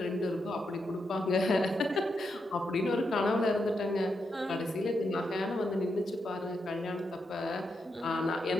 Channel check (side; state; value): both; normal; correlation 0.83